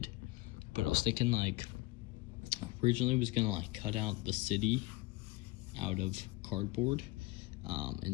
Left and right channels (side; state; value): right; quieter; 21.5 dB